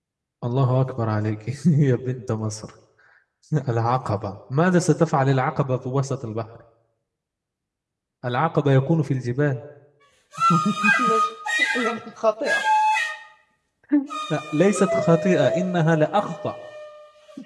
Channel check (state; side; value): identical; both; correlation 1.00